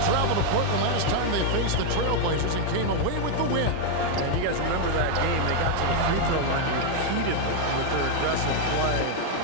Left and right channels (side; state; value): both; different; correlation 0.00